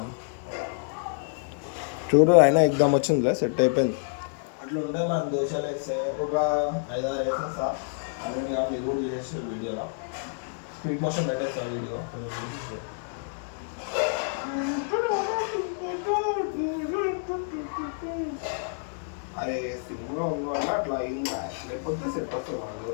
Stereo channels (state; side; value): silent; right; digital silence